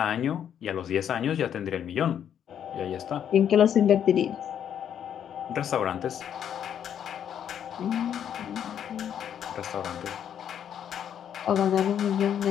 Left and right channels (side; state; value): right; quieter; 9.2 dB